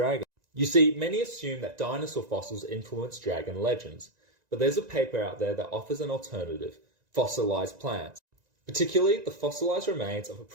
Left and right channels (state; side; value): late; left; 1.9 ms